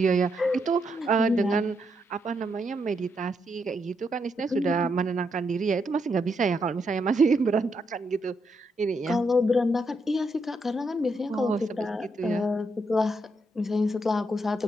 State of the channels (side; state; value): both; normal; correlation 0.79